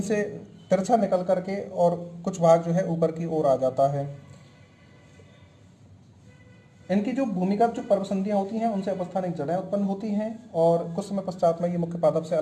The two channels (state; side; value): identical; both; correlation 1.00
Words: से तिरछा निकल करके और कुछ भाग जो है ऊपर की ओर आ जाता है। इनकी जो भूमिगत जो पर्वसंधियाँ होती हैं उनसे अपस्थानिक जड़ें उत्पन्न होती हैं और कुछ समय पश्चात में ये मुख्य पादप से